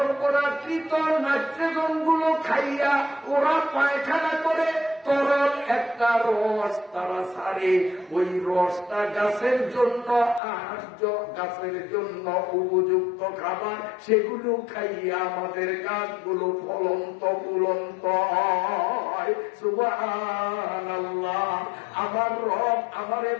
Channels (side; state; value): right; drops out; at 10.4 s